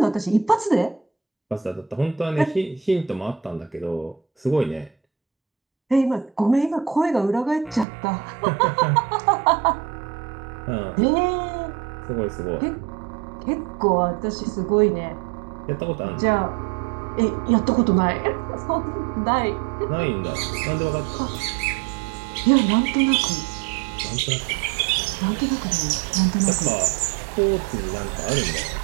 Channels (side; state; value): left; drops out; at 7.9 s